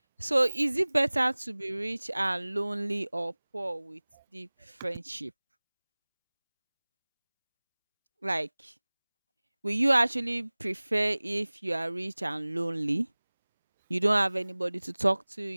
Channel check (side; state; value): both; inverted; correlation -1.00